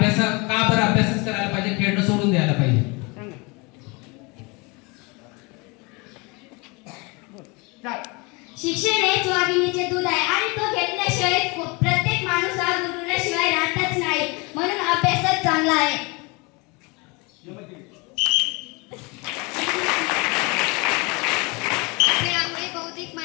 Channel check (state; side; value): quieter; right; 27.8 dB